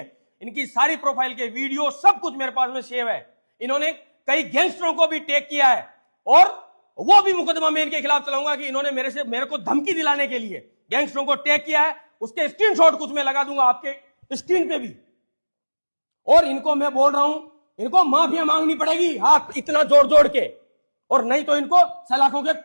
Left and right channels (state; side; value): inverted; both; correlation -1.00